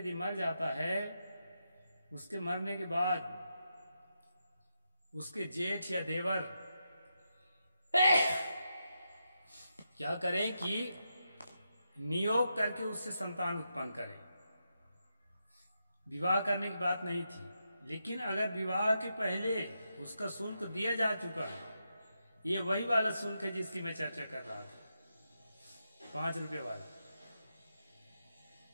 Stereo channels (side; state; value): both; inverted; correlation -0.85